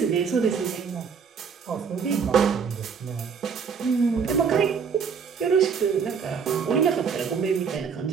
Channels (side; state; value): left; quieter; 6.2 dB